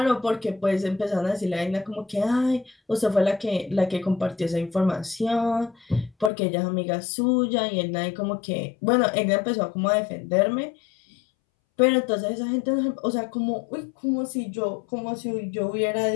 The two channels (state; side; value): drops out; right; at 6.3 s